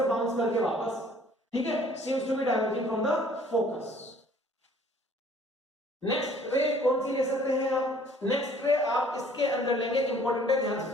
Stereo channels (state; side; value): normal; both; correlation 0.56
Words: बाउंस करके वापस, ठीक है, seems to be diverging from the focus. Next ray कौन सी ले सकते हैं आप? नेक्स्ट रे आप इसके अंदर लेंगे, इंपॉर्टेंट है, ध्यान से